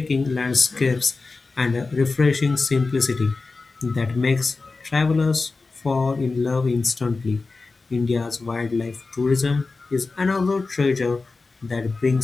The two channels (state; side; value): quieter; right; 3.9 dB